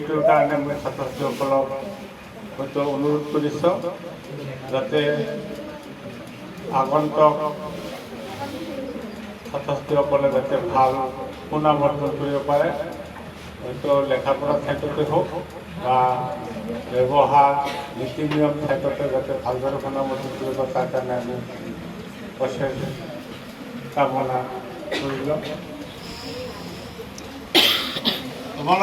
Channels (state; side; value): identical; both; correlation 1.00